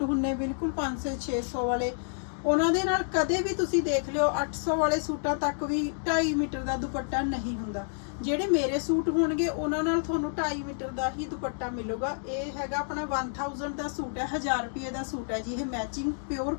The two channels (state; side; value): silent; right; digital silence